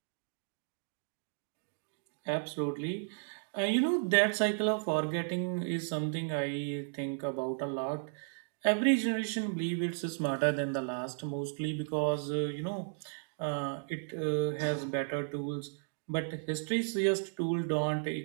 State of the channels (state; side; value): silent; left; digital silence